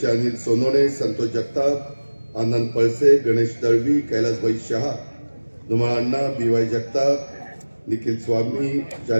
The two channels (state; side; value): inverted; both; correlation -1.00